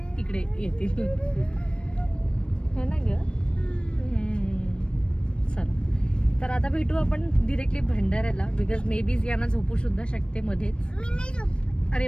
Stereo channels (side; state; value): right; late; 0.056 ms